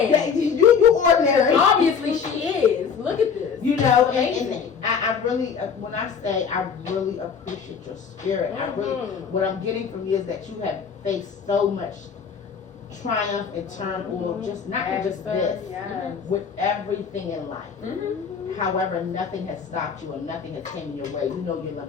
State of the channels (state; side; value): quieter; right; 6.5 dB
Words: You ordinary. Obviously she is. Look at this. You know, and I really, when I say I really appreciate your spirit, I really, what I'm getting from you is that you have faced so much triumph and turmoil, just not just this, with everything in life. However, nothing has stopped you and nothing has came in your way. You know your